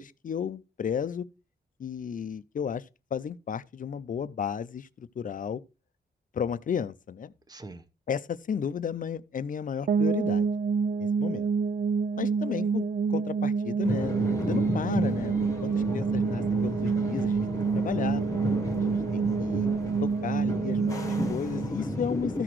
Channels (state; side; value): normal; both; correlation 0.62